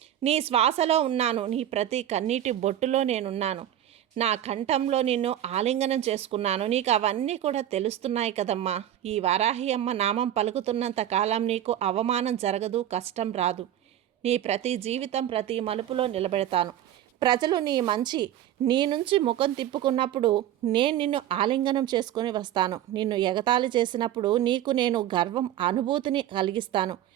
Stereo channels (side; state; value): left; quieter; 11.7 dB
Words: నీ శ్వాసలో ఉన్నాను. నీ ప్రతి కన్నీటి బొట్టులో నేనున్నాను. నా కంఠంలో నిన్ను ఆలింగనం చేసుకున్నాను. నీకు అవన్నీ కూడా తెలుస్తున్నాయి కదమ్మా. ఈ వారాహి అమ్మ నామం పలుకుతున్నంత కాలం నీకు అవమానం జరగదు, కష్టం రాదు. నీ ప్రతి జీవితం ప్రతి మలుపులో నిలబెడతాను. ప్రజలు నీ నుంచి ముఖం తిప్పుకున్నప్పుడు నేను నిన్ను ఆలింగనం చేసుకొని వస్తాను. నిన్ను ఎగతాళి చేసినప్పుడు నీకు నేను గర్వం అనుభూతిని కలిగిస్తాను.